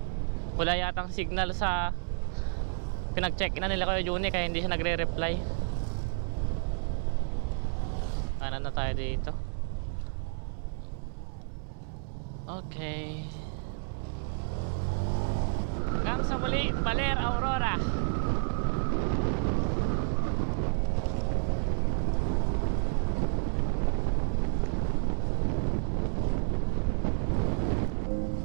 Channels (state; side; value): silent; left; digital silence